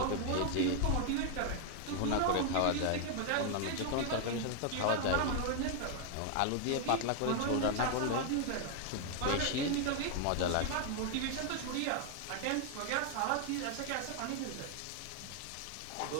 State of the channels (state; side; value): different; both; correlation 0.00